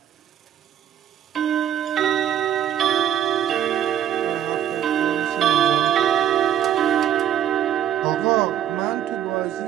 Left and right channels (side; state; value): left; quieter; 10.4 dB